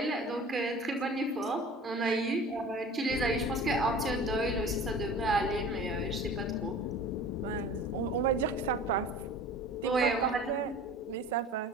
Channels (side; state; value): both; normal; correlation 0.42